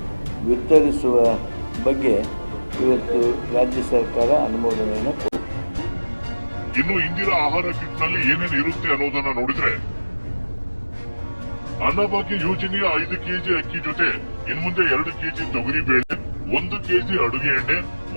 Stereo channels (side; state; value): both; inverted; correlation -1.00